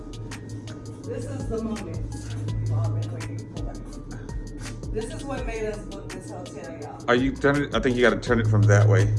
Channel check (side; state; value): both; identical; correlation 1.00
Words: This is the moment we've all been waiting for. This is what made us book this hotel, y'all. Are you turning it? I think you gotta turn it from that way,